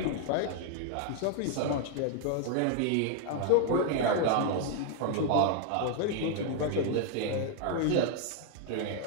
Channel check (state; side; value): different; both; correlation 0.00